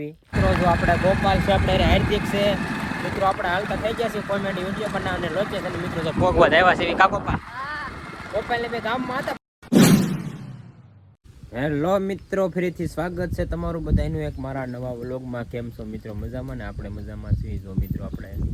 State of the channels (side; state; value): both; identical; correlation 1.00